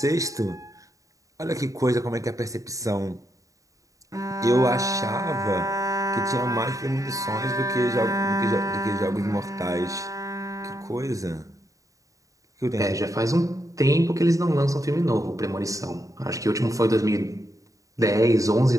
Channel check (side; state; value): left; late; 0.16 ms